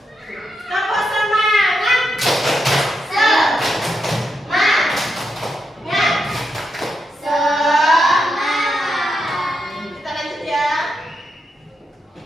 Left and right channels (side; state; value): both; normal; correlation 0.84